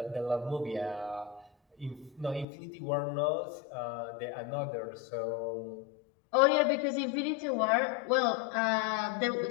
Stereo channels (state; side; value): drops out; right; at 2.5 s